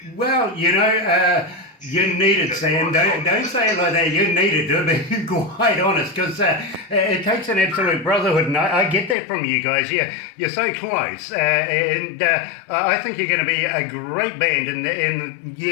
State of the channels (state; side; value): drops out; right; at 9.2 s